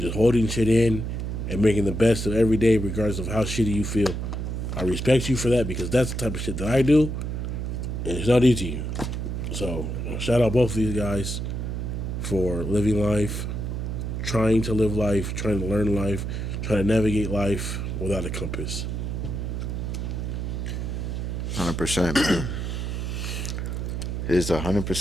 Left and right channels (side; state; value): right; noise; hum, 3 dB below the sound